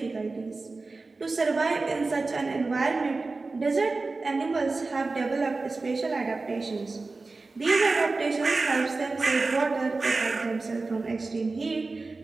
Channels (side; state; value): left; quieter; 3.7 dB